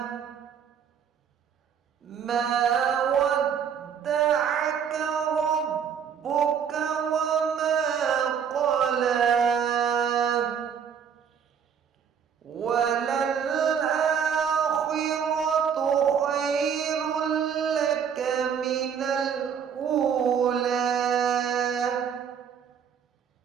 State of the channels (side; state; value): left; quieter; 7.5 dB